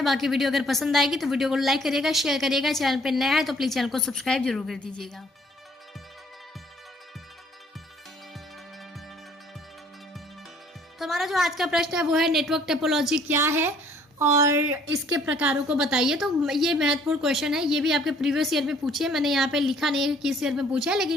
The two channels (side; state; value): both; normal; correlation 0.60